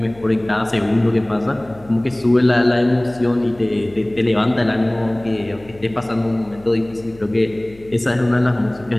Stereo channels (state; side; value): noise; left; hum, 23 dB below the sound